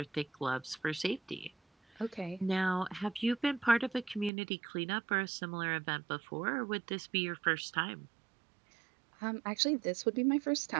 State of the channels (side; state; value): left; drops out; at 4.3 s